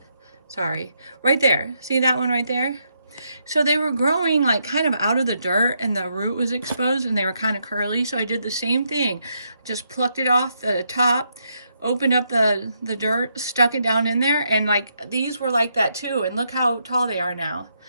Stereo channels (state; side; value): inverted; both; correlation -0.78